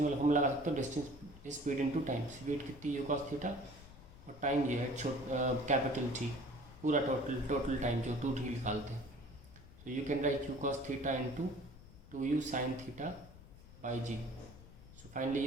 वाला हम लगा सकते हो distance speed into time. Speed कितनी u cos थीटा और टाइम ये है कैपिटल T, पूरा टोटल टाइम जो 2T निकालते हैं। So you can write u cos theta into 2u sin theta by g। So finally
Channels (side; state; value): left; noise; rumble, 19 dB below the sound